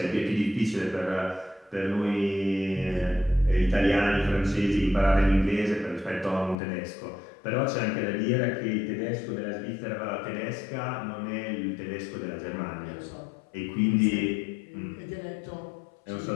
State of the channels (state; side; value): drops out; right; at 6.6 s